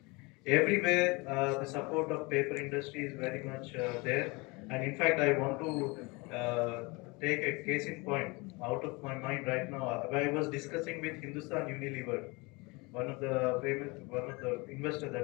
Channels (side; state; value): right; quieter; 26.3 dB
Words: Everywhere the support of paper industry is very much there, and in fact I want to take a case in point out of my mind right now. I was discussing with Hindustan Unilever, one of the investors